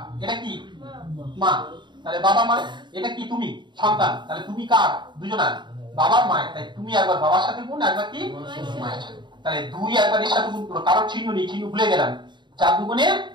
এটা কি মা, তাহলে বাবা মা, এটা কি তুমি সন্তান, তাহলে তুমি কার, দুজনার, বাবার মায়ের, তাই তুমি একবার বাবার সাথে গুণ, একবার কি মায়ের সাথে। তাহলে 2 একবার এর সাথে গুণ করো, কারণ চিহ্ন নেই, চিহ্ন ভুলে গেলাম। 4 দুগুণে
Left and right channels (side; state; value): left; late; 0.22 ms